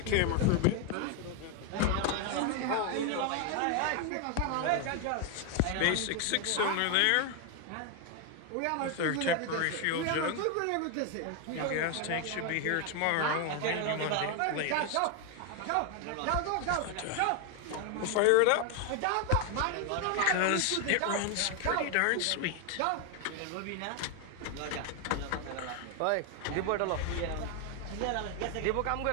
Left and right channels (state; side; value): different; both; correlation 0.01